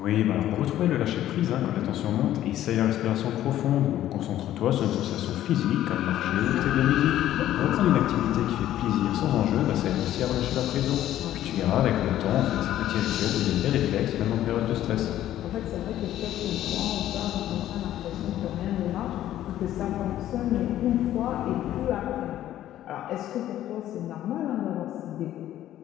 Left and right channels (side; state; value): right; quieter; 12.8 dB